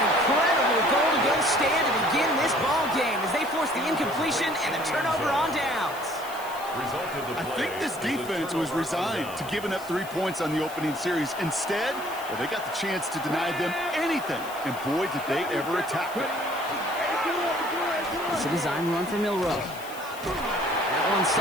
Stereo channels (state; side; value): noise; left; hiss, 16 dB below the sound